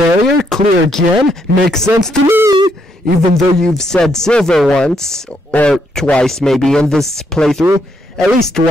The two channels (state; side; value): normal; both; correlation 0.75